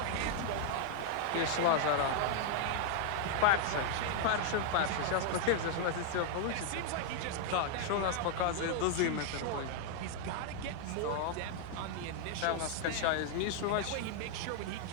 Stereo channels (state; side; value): different; both; correlation 0.00